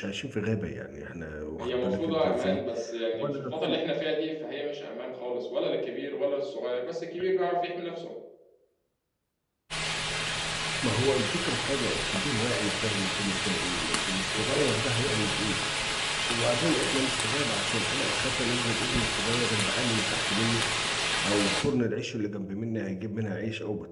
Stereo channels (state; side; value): identical; both; correlation 1.00